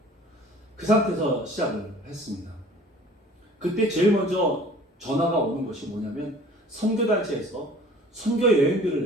그 상태에서 시작을 했습니다. 그때 제일 먼저 전화가 오는 것이 뭐냐면 선교단체에서 선교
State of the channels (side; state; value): both; normal; correlation 0.49